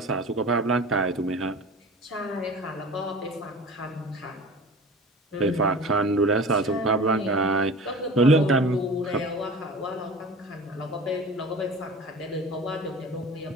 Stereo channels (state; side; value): normal; both; correlation 0.39